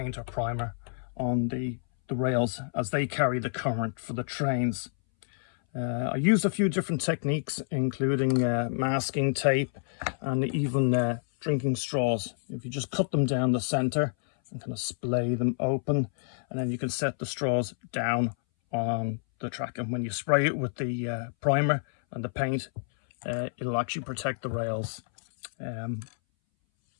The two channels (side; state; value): right; silent; 59 dB below the other